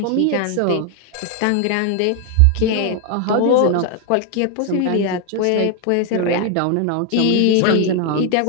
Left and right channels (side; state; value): both; different; correlation 0.00